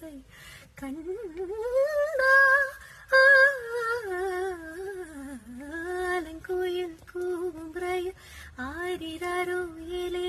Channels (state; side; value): identical; both; correlation 1.00